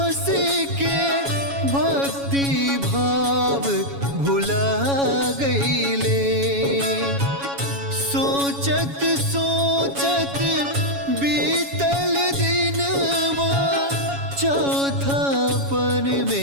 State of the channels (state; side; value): late; left; 7.2 ms